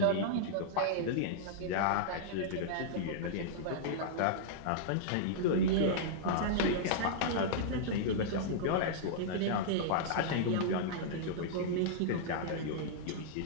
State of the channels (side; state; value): both; different; correlation -0.02